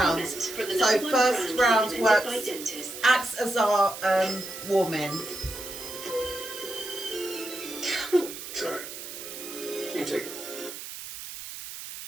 So first round acts as our warm-in. Sorry. You take it.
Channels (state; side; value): noise; right; hiss, 10 dB below the sound